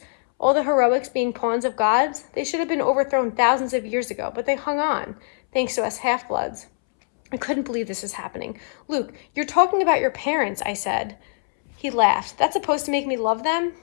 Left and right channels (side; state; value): right; silent; 63 dB below the other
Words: All the heroics being pawns of gods? They should have been overthrown thousands of years ago, but they hung on, thanks to us half-bloods." I couldn't believe this was happening. "Luke, you're talking about your parents," I said. He laughed. "That's supposed to make me love them?